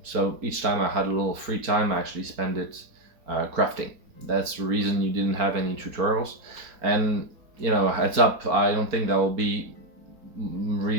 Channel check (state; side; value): late; left; 4.4 ms